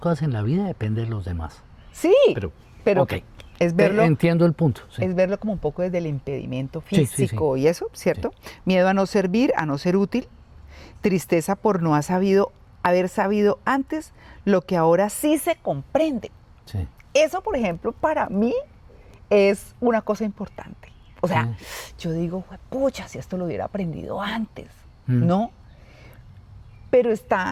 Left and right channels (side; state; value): both; identical; correlation 1.00